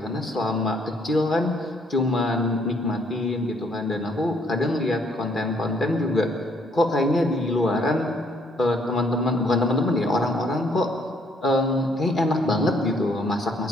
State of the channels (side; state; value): both; normal; correlation 0.66